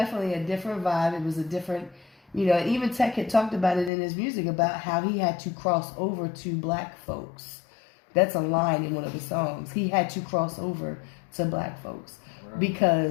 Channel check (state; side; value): drops out; right; at 3.9 s